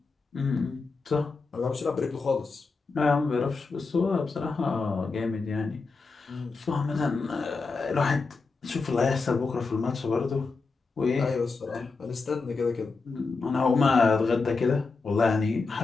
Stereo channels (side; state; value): right; quieter; 4.2 dB